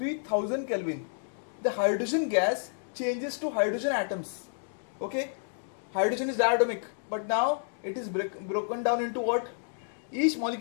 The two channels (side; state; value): right; silent; digital silence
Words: Kelvin, the hydrogen gas changes to hydrogen atoms. Okay, hydrogen is diatomic, but now it is broken down into what? Each